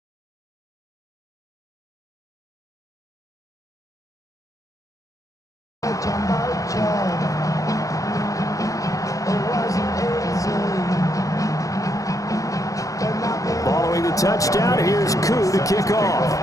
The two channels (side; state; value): right; late; 0.16 ms